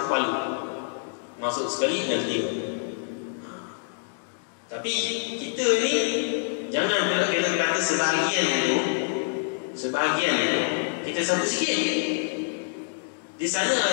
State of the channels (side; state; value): right; silent; digital silence